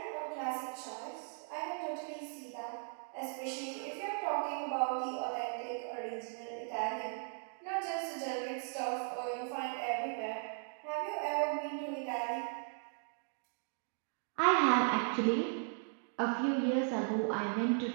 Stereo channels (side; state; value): left; silent; 53 dB below the other